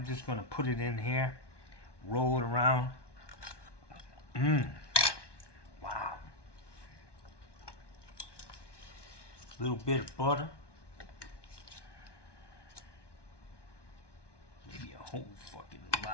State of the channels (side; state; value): right; late; 1.2 ms